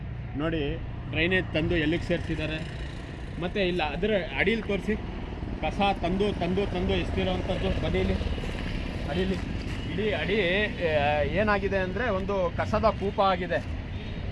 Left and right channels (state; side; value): identical; both; correlation 1.00